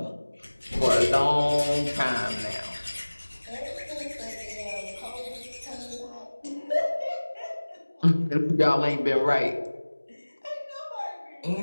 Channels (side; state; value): both; inverted; correlation -1.00